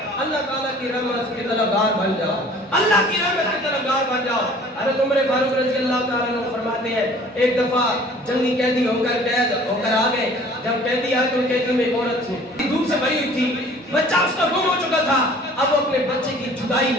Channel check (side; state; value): both; normal; correlation 0.50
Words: اللہ تعالیٰ کی رحمت کے طلبگار بن جاؤ، اللہ کی رحمت کے طلبگار بن جاؤ۔ حضرت عمر فاروق رضی اللہ تعالیٰ عنہ فرماتے ہیں ایک دفعہ جنگی قیدی ہو کر قید ہو کر آ گئے، جب قیدی آئے تو قیدی میں ایک عورت تھی، دودھ سے بھری ہوئی تھی، بچہ اس کا گم ہو چکا تھا، اب وہ اپنے بچے کی جدائی